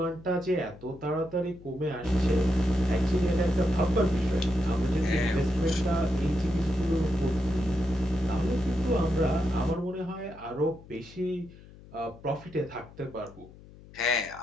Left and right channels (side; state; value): left; noise; hum, 20 dB below the sound